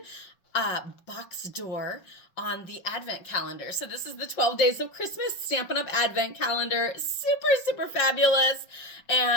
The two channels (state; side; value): late; right; 5.6 ms